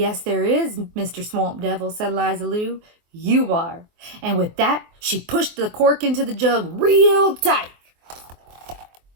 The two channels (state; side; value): late; left; 24 ms